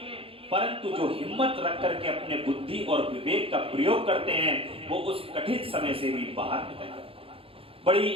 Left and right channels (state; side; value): late; left; 0.27 ms